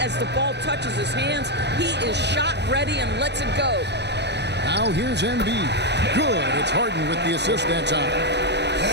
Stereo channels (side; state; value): left; late; 0.50 ms